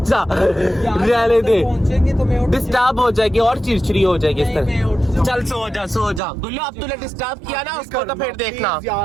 जा, रहने दे, पहुंचेंगे तो मैं उठ डिस्टर्ब हो जाएगी और चिड़चिड़ी हो जाएगी इस नहीं, मैं उठ तरह। जाऊँ। चल सो जा गुल्लो, अब तूने डिस्टर्ब किया ना उसको, तो फिर देखना। प्लीज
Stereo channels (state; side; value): drops out; left; at 6.2 s